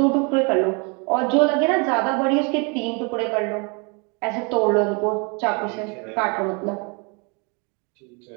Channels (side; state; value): left; quieter; 33.0 dB